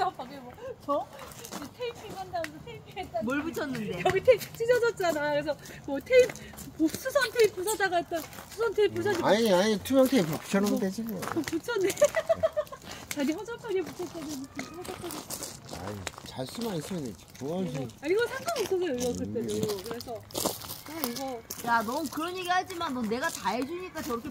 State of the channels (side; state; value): both; identical; correlation 1.00